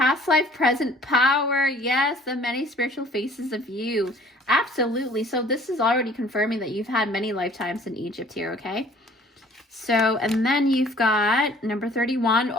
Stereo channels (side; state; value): both; normal; correlation 0.53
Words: life, present power. Yes, the many spiritual faces of you. Absolutely. So this is already confirming that you've had many lifetimes in Egypt here, okay? So, and then you've got number 31.